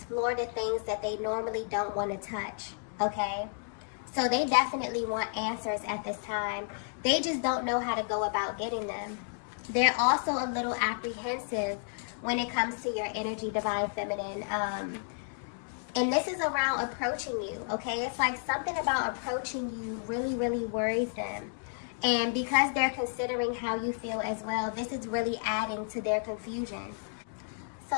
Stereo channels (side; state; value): right; silent; digital silence